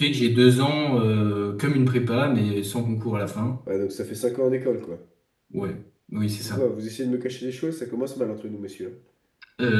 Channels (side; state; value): both; identical; correlation 1.00